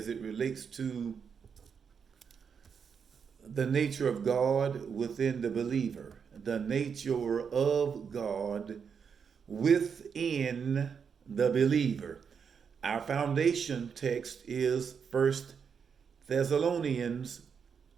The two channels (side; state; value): left; quieter; 6.6 dB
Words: it relates to the nature of God within the believer, the nature of God within the believer. Our foundation text is First Thessalonians